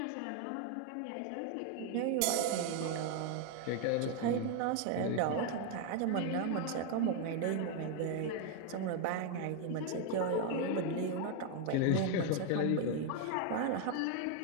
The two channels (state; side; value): different; both; correlation 0.01